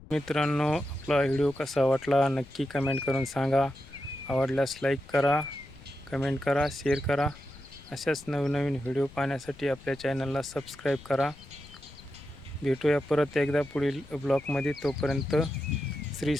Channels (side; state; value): left; noise; rumble, 20 dB below the sound